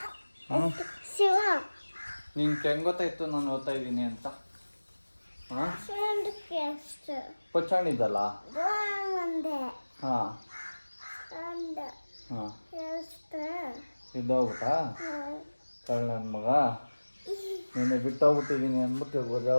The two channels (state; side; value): inverted; both; correlation -1.00